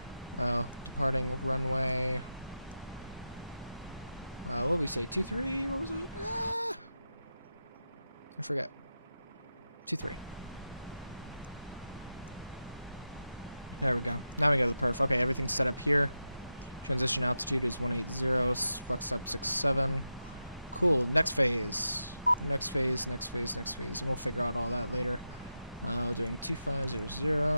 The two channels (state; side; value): inverted; both; correlation -0.90